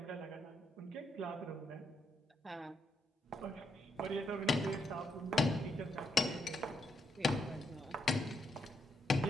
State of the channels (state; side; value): normal; both; correlation 0.78